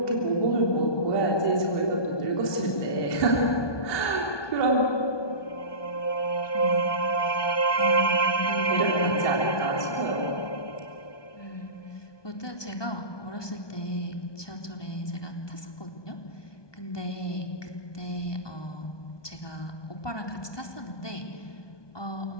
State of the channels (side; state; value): right; late; 1.2 ms